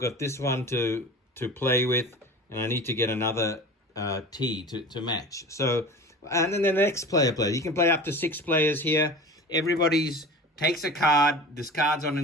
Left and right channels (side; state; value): both; normal; correlation 0.36